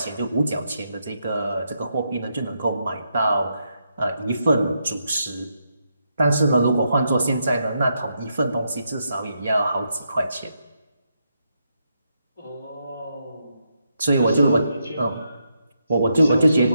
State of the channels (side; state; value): both; inverted; correlation -0.81